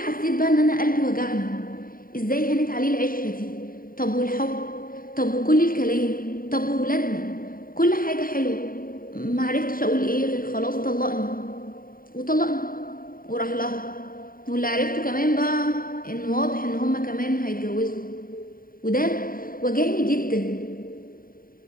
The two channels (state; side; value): late; right; 0.41 ms